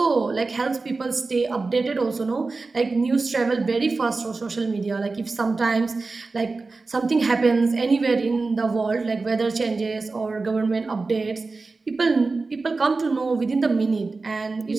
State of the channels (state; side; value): quieter; left; 3.8 dB